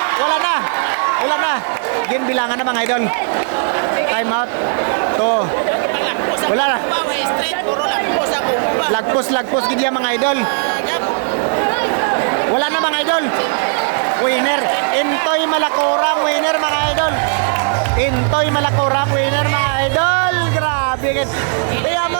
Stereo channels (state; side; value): silent; left; 61 dB below the other